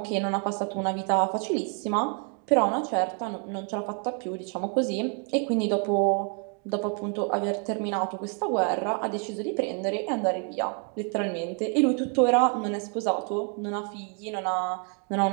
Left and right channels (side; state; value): left; quieter; 39.5 dB